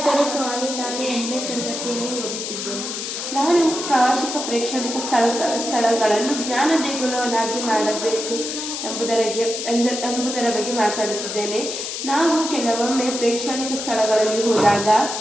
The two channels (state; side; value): noise; left; hiss, 5 dB below the sound